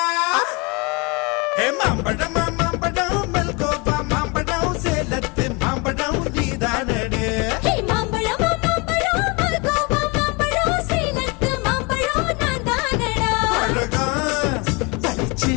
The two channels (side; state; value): right; quieter; 29.0 dB